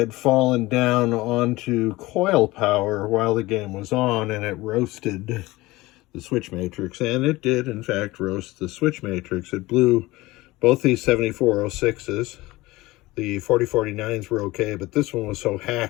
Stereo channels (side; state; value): right; quieter; 19.9 dB